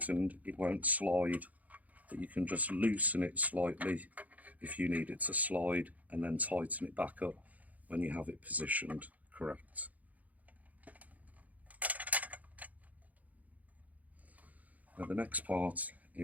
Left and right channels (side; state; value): left; late; 0.076 ms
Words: it won't slide, but you can just loosen it slightly if you need it to slide, and then tighten it back up when you have it positioned correct. Now the next part